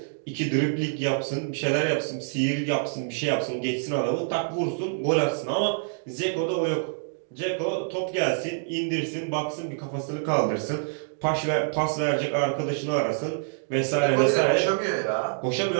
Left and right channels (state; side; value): silent; left; digital silence